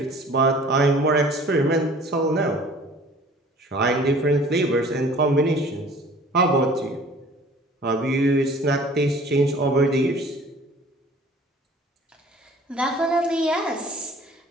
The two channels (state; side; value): normal; both; correlation 0.49